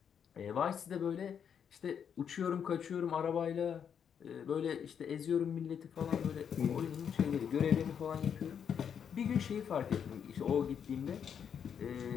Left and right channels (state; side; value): quieter; right; 7.8 dB